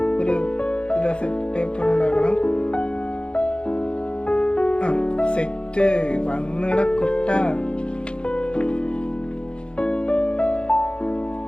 ഒരു പേപ്പർ ഉണ്ടാക്കണം. സെറ്റ് വന്നിട കുട്ട.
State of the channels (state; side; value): late; right; 0.054 ms